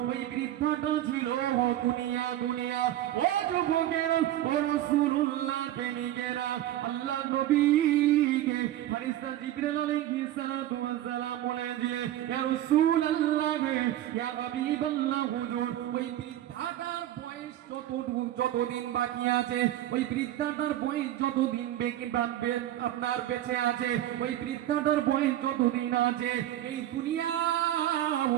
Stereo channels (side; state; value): left; quieter; 13.1 dB